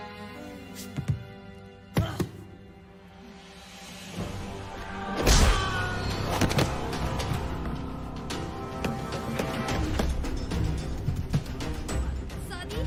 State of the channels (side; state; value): both; identical; correlation 1.00